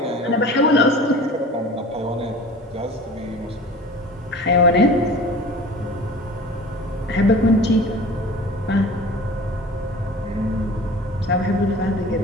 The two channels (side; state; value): both; normal; correlation 0.41